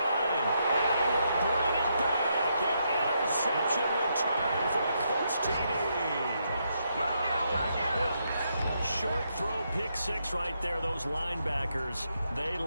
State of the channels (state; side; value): inverted; both; correlation -0.79